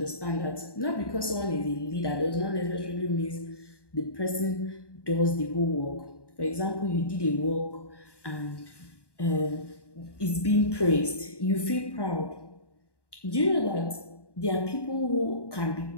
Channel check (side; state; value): right; late; 1.1 ms